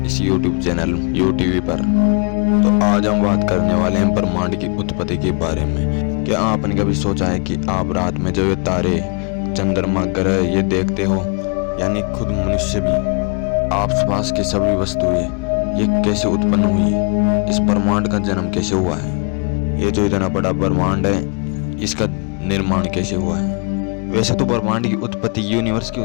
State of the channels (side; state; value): right; quieter; 35.2 dB